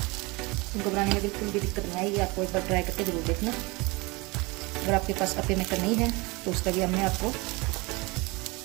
इनको बनाने में बिल्कुल भी दिक्कत नहीं आएगी। आपको एक बार ट्राई करके ज़रूर देखना। अगर आपके पास अप्पे मेकर नहीं है तो उसका भी हमने आपको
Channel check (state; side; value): quieter; left; 25.2 dB